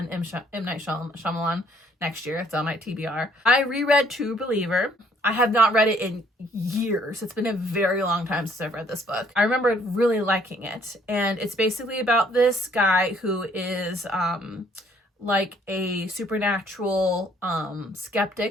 M. Night Shyamalan next year. It's on my TBR. I reread True Believer. I have not read it in years. It's been a very long time since I've read this book. I remember really liking it. And it's basically about this guy who is like a supernatural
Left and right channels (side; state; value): both; normal; correlation 0.63